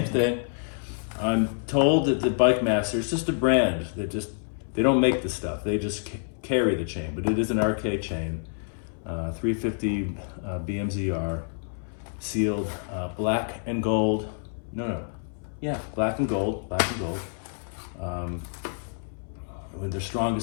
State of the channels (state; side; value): silent; right; 60 dB below the other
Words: thing. I'm told that the Bike Master, it's just a brand that they don't make the stuff. They just carry the chain, but it is an RK chain, 350 BMZR, sealed black and gold. Black and gold. With the